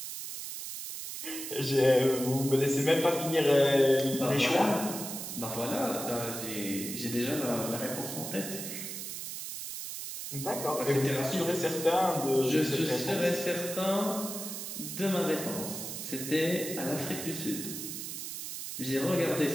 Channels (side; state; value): right; noise; hiss, 7 dB below the sound